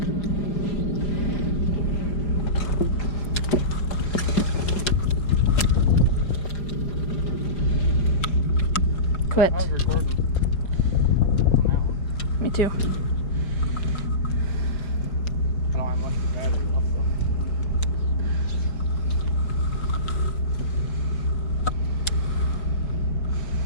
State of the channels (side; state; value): right; late; 5.0 ms